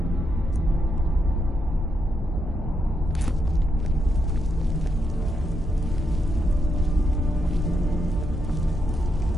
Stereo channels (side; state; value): both; normal; correlation 0.81